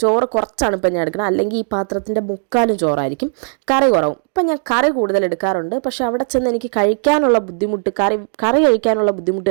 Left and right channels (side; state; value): left; silent; digital silence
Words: ചോറ് കുറച്ചാണ് ഇപ്പം ഞാൻ എടുക്കുന്നത്. അല്ലെങ്കിൽ ഈ പാത്രത്തിൻ്റെ മുക്കാലും ചോറായിരിക്കും, കറി കുറവും. ഇപ്പം ഞാൻ കറി കൂടുതൽ എടുക്കാറുണ്ട്. പക്ഷേ അവിടെ ചെന്ന് എനിക്ക് കഴിക്കാനുള്ള ബുദ്ധിമുട്ട്, കറി കഴിക്കാനുള്ള ബുദ്ധിമുട്ട്